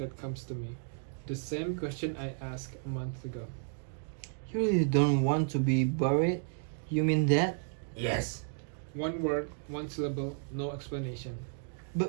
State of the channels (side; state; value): left; silent; 56 dB below the other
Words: comes to me. The same question I asked a month ago. You really don't want to be buried? You mean that? Yes. One word, one syllable, no explanation.